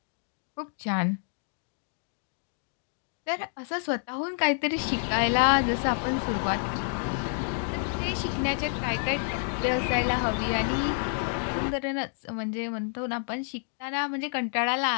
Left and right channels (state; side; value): silent; right; 59 dB below the other